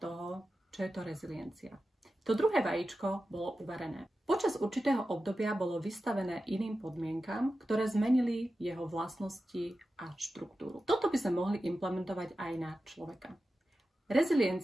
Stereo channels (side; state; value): both; normal; correlation 0.93